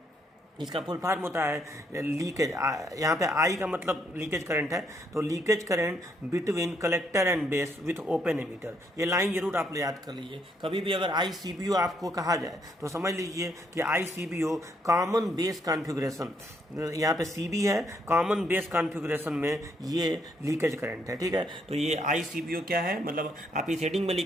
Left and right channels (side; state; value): both; normal; correlation 0.73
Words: इसका फुल फॉर्म होता है लीकेज, यहाँ पे आई का मतलब लीकेज करंट है, तो leakage current between collector and base with open emitter. ये लाइन जरूर आप लोग याद कर लीजिए। कभी भी अगर ICBO आपको कहा जाए तो समझ लीजिए कि ICBO कॉमन बेस कॉन्फ़िगरेशन, यहाँ पे CB है, कॉमन बेस कॉन्फ़िगरेशन में ये लीकेज करंट है। ठीक है, तो ये ICBO क्या है, मतलब आप इस हेडिंग में